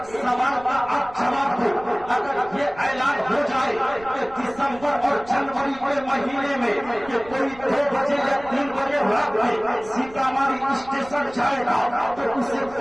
سوال کا آپ جواب دو، اگر یہ اعلان ہو جائے کہ دسمبر اور جنوری کے مہینے میں کہ کوئی 2 بجے یا 3 بجے رات میں سیتامڑھی اسٹیشن جائے گا تو اسے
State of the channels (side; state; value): right; noise; rumble, 21 dB below the sound